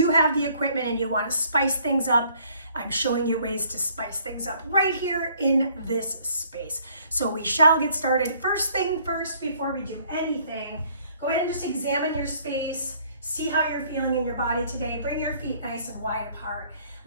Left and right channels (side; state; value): both; inverted; correlation -0.61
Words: have the equipment and you want to spice things up, I'm showing you ways to spice things up right here in this space. So we shall get started. First thing first, before we do anything, go ahead and just examine your space, see how you're feeling in your body today. Bring your feet nice and wide apart.